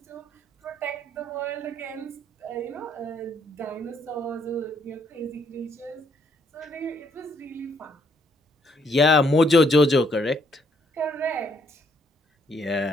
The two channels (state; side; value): normal; both; correlation 0.70